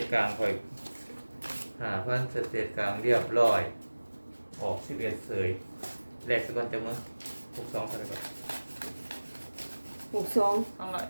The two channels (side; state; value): both; inverted; correlation -1.00